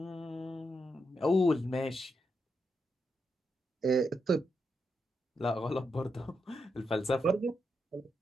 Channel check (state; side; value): normal; both; correlation 0.83